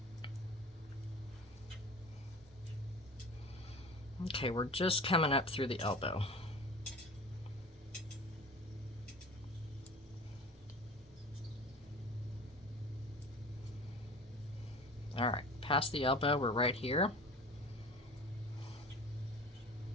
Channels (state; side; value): normal; both; correlation 0.38